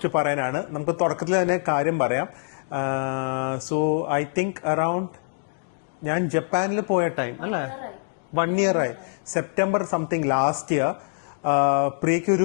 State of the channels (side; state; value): right; silent; digital silence